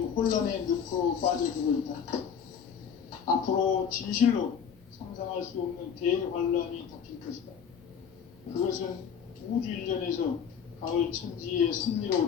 혼란의 늪으로 빠져들고 있다. 앞으로 진실로 상상할 수 없는 대환란이 닥칠 것이다. 그것은 우주 일전에서 가을 천지의 섭리로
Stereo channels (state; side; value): quieter; right; 7.4 dB